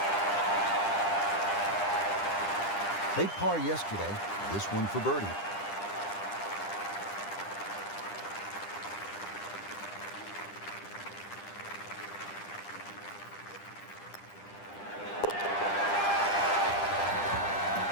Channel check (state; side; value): late; right; 10 ms